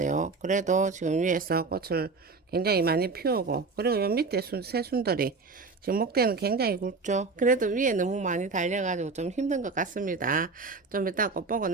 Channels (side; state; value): left; quieter; 4.2 dB